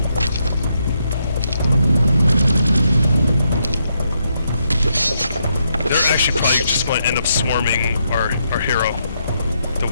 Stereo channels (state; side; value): inverted; both; correlation -0.79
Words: They're actually probably just going to end up swarming our hero, the